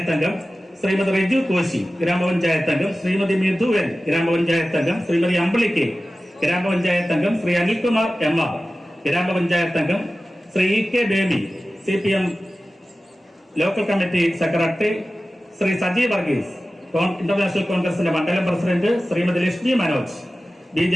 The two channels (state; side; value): normal; both; correlation 0.95